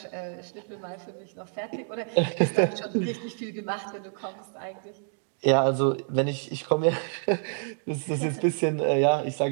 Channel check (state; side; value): silent; left; digital silence